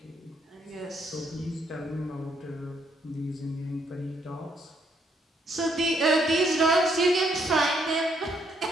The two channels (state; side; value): normal; both; correlation 0.72